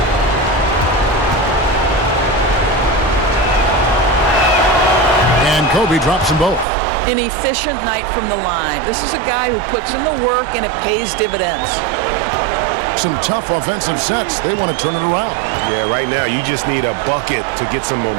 And Kobe drops them both. An efficient night from the line. This is a guy who puts in the work and it pays dividends. Some tough offensive sets. They want to turn it around. Yeah, right now you just need a bucket to get some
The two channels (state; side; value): drops out; left; at 6.7 s